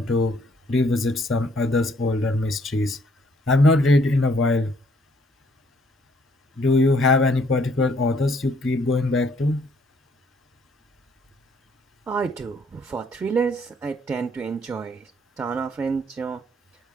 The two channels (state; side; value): normal; both; correlation 0.65